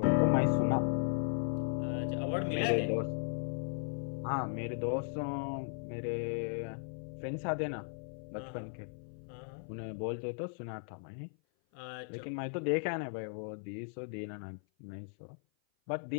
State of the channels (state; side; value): silent; right; 53 dB below the other